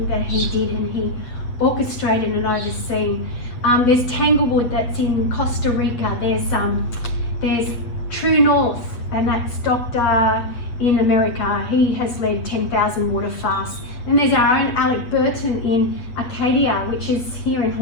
that he did, and he orchestrated and overseen. There's Tanglewood that's in Costa Rica. There's True North, and that's Doctor in America. He has led 10,000 water fasts. And there's our own Alec Burton in Acadia, which is here in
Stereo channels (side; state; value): right; late; 8.3 ms